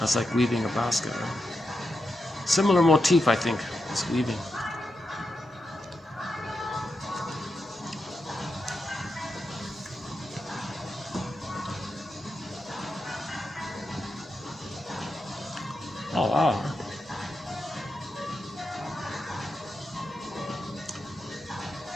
like weaving a basket, right? Similar motif, I think, as weaving. Oh, wow.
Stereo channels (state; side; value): normal; both; correlation 0.87